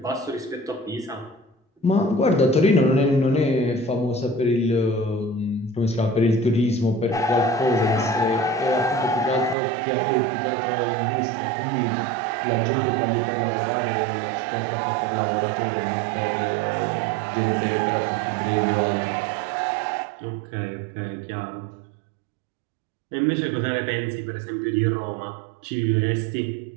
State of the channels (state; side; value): drops out; left; at 9.6 s